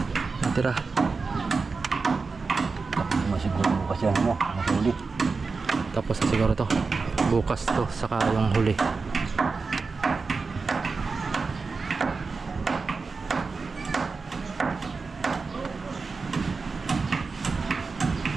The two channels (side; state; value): left; quieter; 4.4 dB